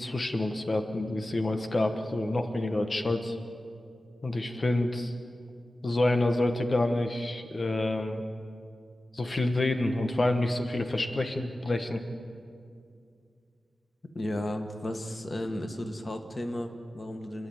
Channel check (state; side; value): normal; both; correlation 0.95